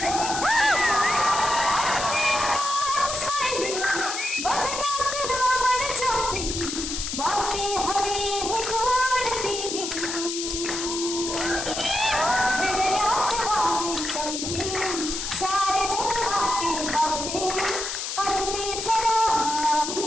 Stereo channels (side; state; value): left; noise; hiss, 4 dB below the sound